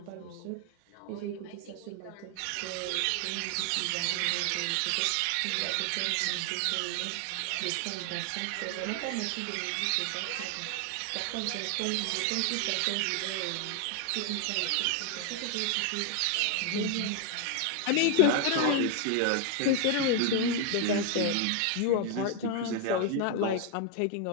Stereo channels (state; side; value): different; both; correlation 0.01